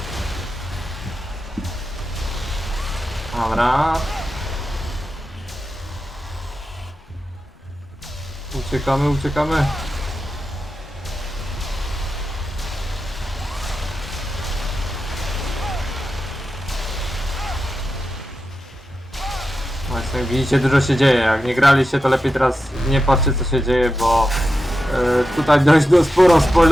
Dobra. Uciekamy, uciekamy. Właśnie, jak widzicie, dużo się dzieje. Jak nie graliście, to lepiej teraz nie patrzcie, co się dzieje, bo tutaj dość sporo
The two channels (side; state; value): both; normal; correlation 0.90